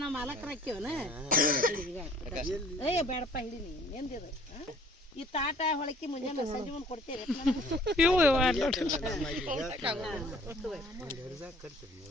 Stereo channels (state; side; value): normal; both; correlation 0.54